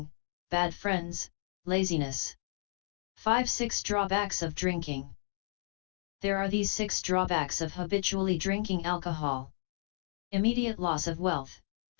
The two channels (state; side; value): silent; right; digital silence